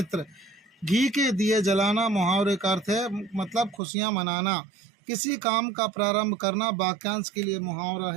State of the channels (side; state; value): left; drops out; at 3.8 s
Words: घी के दिए जलाना मुहावरे का अर्थ है मतलब खुशियां मनाना। किसी काम का प्रारंभ करना वाक्यांश के लिए मुहावरा